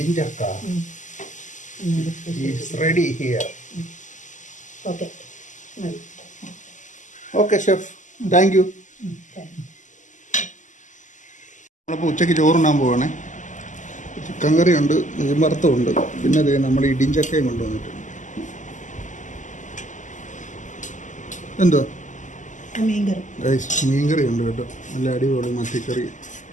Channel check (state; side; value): late; right; 0.36 ms